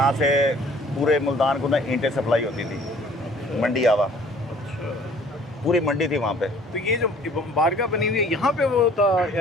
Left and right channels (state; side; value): normal; both; correlation 0.54